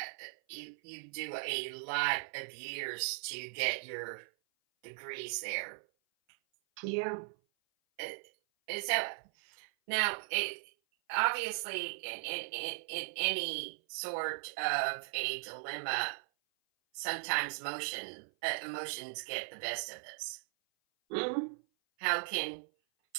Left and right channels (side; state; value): left; silent; 52 dB below the other